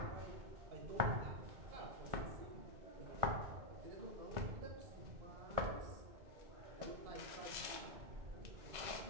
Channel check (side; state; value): left; late; 2.2 ms